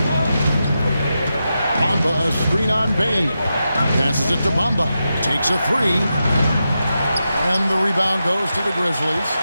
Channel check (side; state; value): both; inverted; correlation -0.89